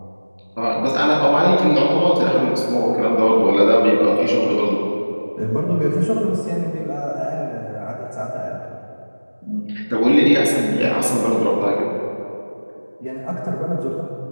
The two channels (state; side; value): inverted; both; correlation -1.00